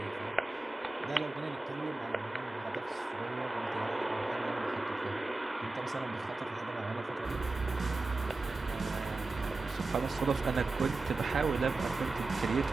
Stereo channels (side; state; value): left; quieter; 3.3 dB